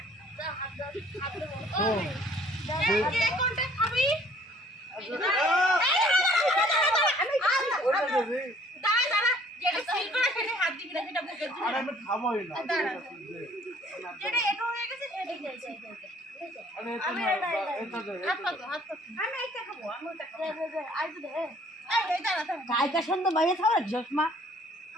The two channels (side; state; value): both; normal; correlation 0.58